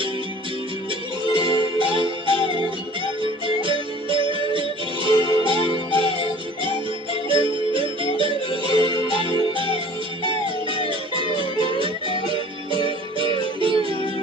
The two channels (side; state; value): both; normal; correlation 0.48